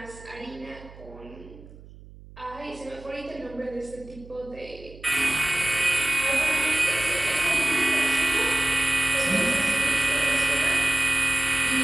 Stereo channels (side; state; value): right; noise; hum, 19 dB below the sound